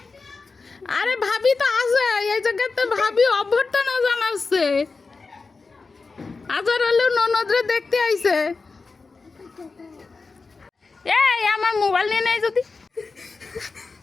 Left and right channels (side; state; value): right; quieter; 4.2 dB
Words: আরে ভাবি তো আছে এই জায়গাতে ভাবি অভ্যর্থনা জানাচ্ছে আজার হলেও ননদরে দেখতে আইছে এই আমার মোবাইল নিয়ে নেই যদি